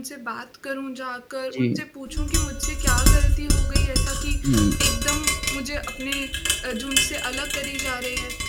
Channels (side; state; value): both; identical; correlation 1.00